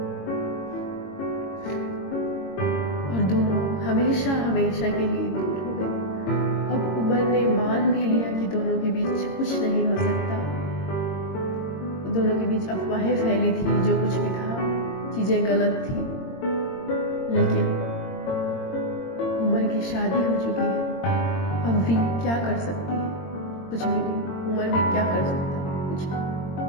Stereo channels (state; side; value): late; right; 22 ms